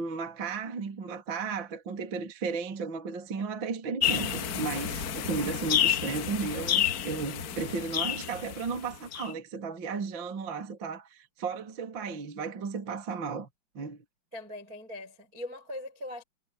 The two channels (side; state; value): left; late; 4.6 ms